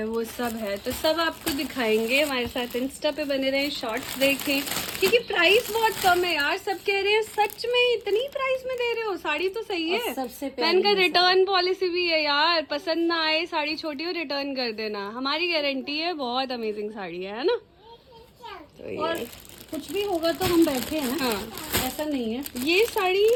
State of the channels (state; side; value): identical; both; correlation 1.00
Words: वो सब है, तो सब आपको दिखाएंगे। हमारे साथ इंस्टा पे बने रहें, शॉर्ट्स देखें, क्योंकि प्राइस बहुत कम है यार। सब कह रहे हैं सच में इतनी प्राइस में दे रहे हो, साड़ी तो सही है। सबसे मैंने कहा रिटर्न पॉलिसी भी है यार, पसंद ना आए साड़ी छोटी हो, रिटर्न कर देना, हमारी गारंटी है। बहुत अमेजिंग साड़ी है ना। तो ये, और कुछ भी होगा तो हम बैठे हैं, हाँ, ऐसा नहीं है। ये साड़ी,